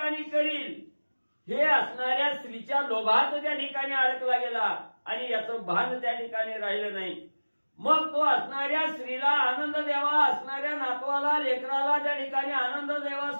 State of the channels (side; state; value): both; inverted; correlation -1.00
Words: करील, हे असणाऱ्या स्त्रीच्या लोभात त्या ठिकाणी अडकला गेला आणि याचं भान त्या ठिकाणी राहिलं नाही। मग तो असणाऱ्या स्त्रीला आनंद द्यावा, असणाऱ्या नातवाला लेकराला त्या ठिकाणी आनंद द्यावा,